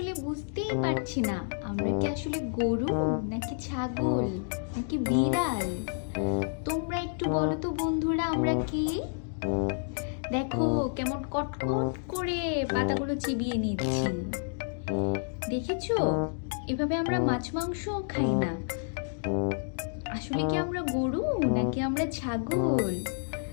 বুঝতেই পারছি না আমরা কি আসলে গরু নাকি ছাগল নাকি বিড়াল। তোমরা একটু বলো তো বন্ধুরা, আমরা কি? দেখো কেমন কটকট করে পাতাগুলো চিবিয়ে নিচ্ছি, দেখেছো? এভাবে আমরা মাছ মাংস খাই না। আসলে কি আমরা গরু নাকি আমরা ছাগল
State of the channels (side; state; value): right; silent; digital silence